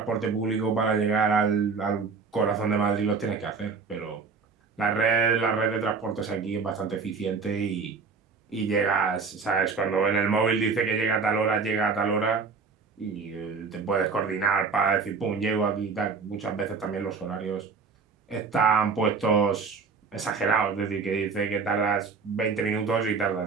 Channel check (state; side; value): quieter; left; 4.9 dB